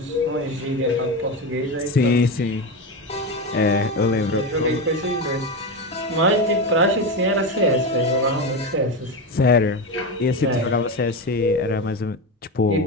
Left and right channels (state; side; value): normal; both; correlation 0.17